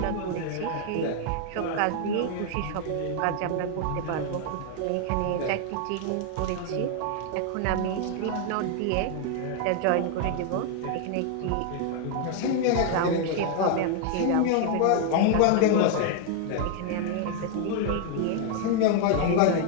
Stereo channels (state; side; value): different; both; correlation 0.00